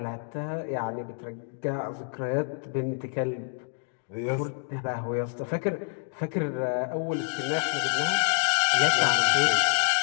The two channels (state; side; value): silent; right; 60 dB below the other